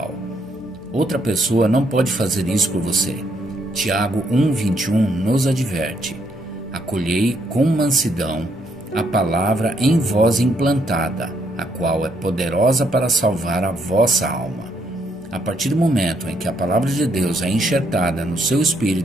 Outra pessoa não pode fazer isso por você. Tiago 1:21 nos adverte: acolhei com mansidão a palavra em vós implantada, a qual é poderosa para salvar a vossa alma. A partir do momento em que a palavra de Deus é enxertada no seu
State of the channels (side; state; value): both; normal; correlation 0.73